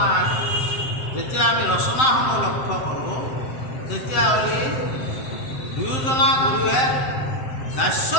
যেতিয়া আমি ৰচনাসমূহ লক্ষ্য কৰোঁ, তেতিয়াহ'লে দুয়োজনা গুৰুৱে দাস্য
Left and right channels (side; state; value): right; late; 7.7 ms